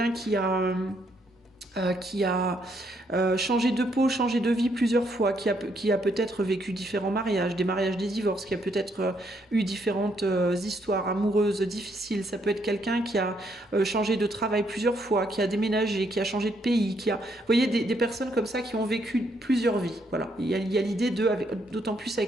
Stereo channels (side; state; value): both; normal; correlation 0.73